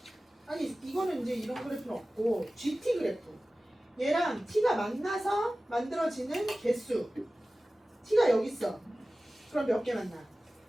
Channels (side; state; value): both; normal; correlation 0.96